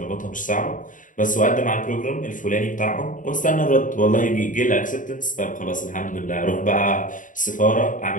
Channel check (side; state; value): right; late; 0.38 ms